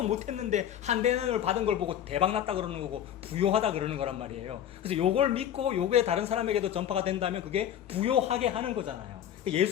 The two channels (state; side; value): quieter; right; 10.4 dB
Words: 못했는데 한 대는을 받은 걸 보고 대박났다 그러는 거고 부요하다 그러는 거란 말이에요. 그래서 요걸 믿고 요게 다른 사람에게도 전파가 된다면 그게 부요하게 하는 거잖아요.